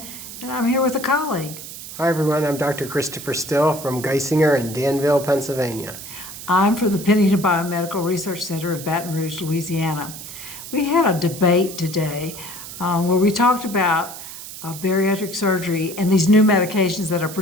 and I'm here with a colleague. Hi everyone, I'm Dr. Christopher Still from Geisinger in Danville, Pennsylvania. I'm from the Pennington Biomedical Research Center in Baton Rouge, Louisiana. We had a debate today where we talked about bariatric surgery and these new medications that are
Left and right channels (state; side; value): noise; right; hiss, 12 dB below the sound